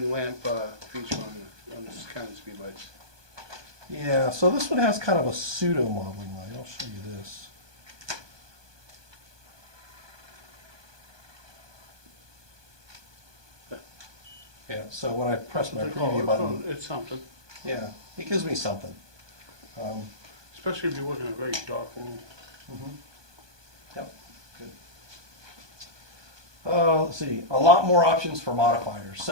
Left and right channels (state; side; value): late; left; 1.2 ms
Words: lamp feature on this kind of speed lights. Yeah, so this one has kind of a pseudo modeling light. I'll show you this. Yeah, so when I press my preview button, It's something, yeah, it gives me something. especially if you're working in a very dark room. Yep, good. Let's see, a lot more options for modifiers.